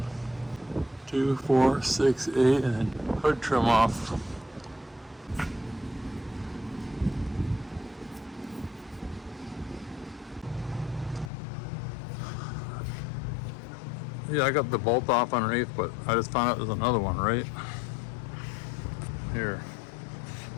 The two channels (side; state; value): right; drops out; at 11.3 s